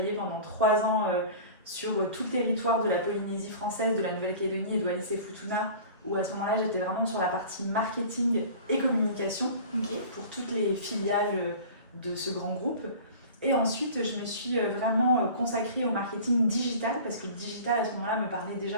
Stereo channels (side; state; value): both; inverted; correlation -0.40